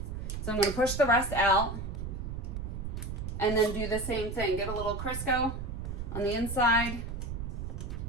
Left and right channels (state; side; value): noise; right; rumble, 5 dB below the sound